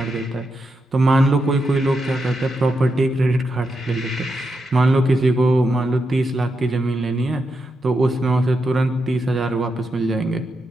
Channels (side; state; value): both; normal; correlation 0.85